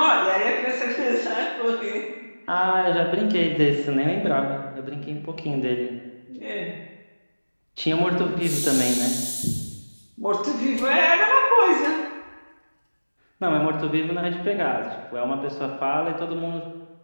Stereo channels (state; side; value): inverted; both; correlation -1.00